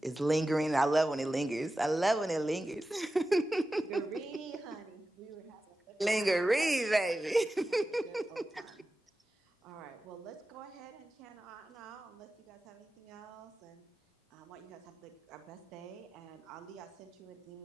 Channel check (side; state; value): both; normal; correlation 0.94